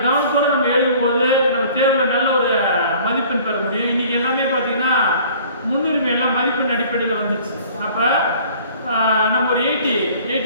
கவனத்தோடு நம்ம எழுதும்போது நம்ம தேர்வில் நல்ல ஒரு மதிப்பெண் பெற முடியும். இன்றைக்கி எல்லாமே பார்த்திங்கன்னா முன்னுரிமை எல்லாம் மதிப்பெண் அடிப்படையில் வந்துச்சு. அப்போ நம்ம ஒரு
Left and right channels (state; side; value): inverted; both; correlation -0.51